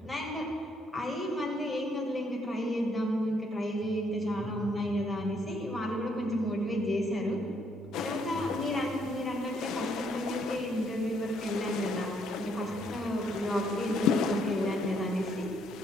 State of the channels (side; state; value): both; normal; correlation 0.70